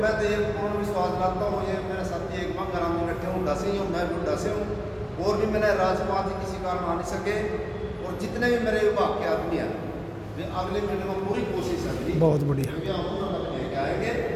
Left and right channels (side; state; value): both; identical; correlation 1.00